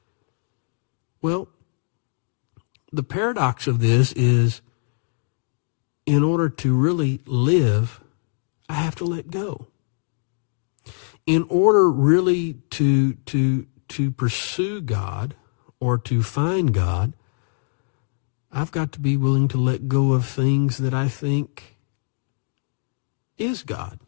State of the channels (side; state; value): right; silent; digital silence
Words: Well, the paradox of this is, in order to really live, I have to let go. In order really to pursue God or to find God, I've got to be willing to let go of things that I think is God.